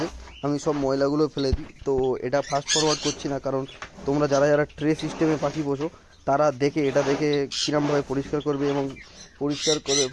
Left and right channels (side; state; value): both; identical; correlation 1.00